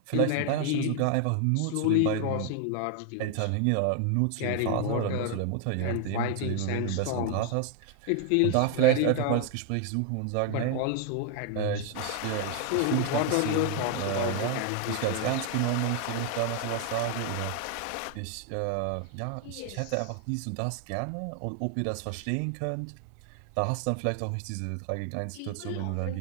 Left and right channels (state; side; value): different; both; correlation 0.00